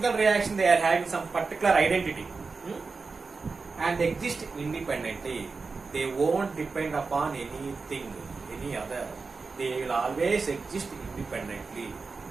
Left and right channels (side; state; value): left; quieter; 4.4 dB